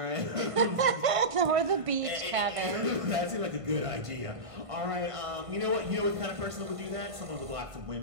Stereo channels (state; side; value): late; left; 1.5 ms